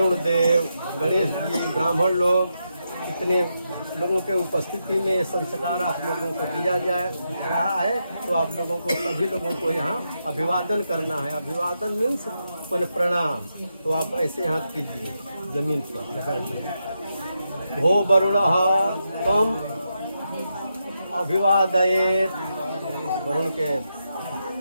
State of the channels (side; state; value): both; inverted; correlation -0.84